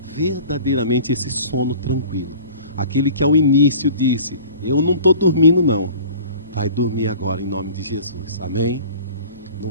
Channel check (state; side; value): inverted; both; correlation -0.44